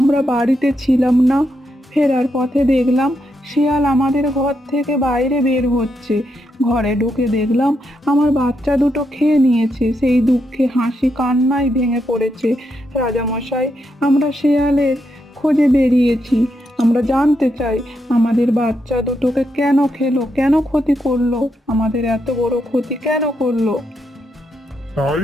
বাড়িতে ছিলাম না, ফেরার পথে দেখলাম শেয়াল আমাদের ঘর থেকে বাইরে বের হচ্ছে। ঘরে ঢুকে দেখলাম আমার বাচ্চা দুটো খেয়ে নিয়েছে। সেই দুঃখে হাসি কান্নায় ভেঙে পড়েছে। রাজামশাই, আমরা শেয়ালের খোঁজে বেরিয়েছি। আমরা জানতে চাই আমাদের বাচ্চা দুটোকে কেন খেলো, কেন ক্ষতি করলো, আমাদের এত বড় ক্ষতি কেন করলো? তাই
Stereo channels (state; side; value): normal; both; correlation 0.81